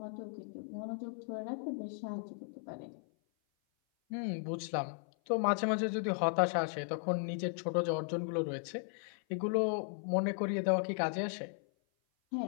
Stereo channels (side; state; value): right; silent; 54 dB below the other